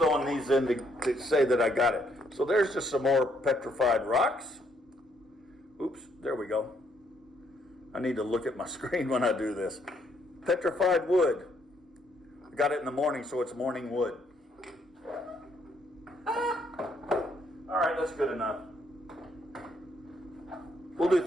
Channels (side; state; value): both; normal; correlation 0.71